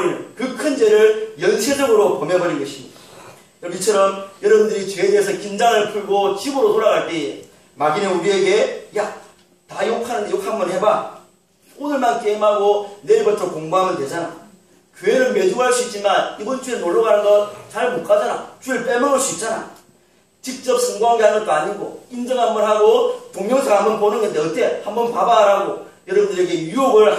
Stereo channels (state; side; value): identical; both; correlation 1.00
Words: 그 큰 죄를 연쇄적으로 범해버린 것입니다. 이처럼 여러분들이 죄에 대해서 긴장을 풀고 집으로 돌아갈 때에 마귀는 우리에게 다 욕하는데 욕 한번 해봐. 오늘만 게임하고 내일부터 공부하면 되잖아. 교회는 매주 갈 수 있지만 이번 주에 놀러 가는 거 잘 못 가잖아. 주일 빼먹을 수 있잖아. 직접 성공하게 하는 것도 아니고 인정 한번 하고 동영상 한번 보는 건데 어때? 한번 봐봐 라고 여러분들에게 유혹을